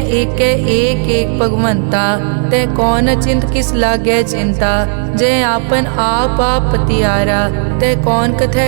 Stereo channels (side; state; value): left; silent; digital silence